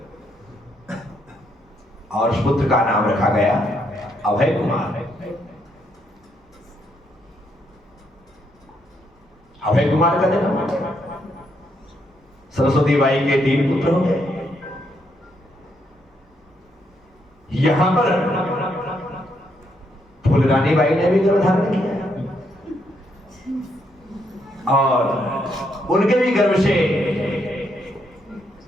और उस पुत्र का नाम रखा गया अभय कुमार। अभय कुमार का जन्म, सरस्वती बाई के 3 पुत्र हो गए। यहां पर फूलरानी बाई ने भी गर्भ धारण किया, और उनके भी गर्भ से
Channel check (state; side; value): normal; both; correlation 0.76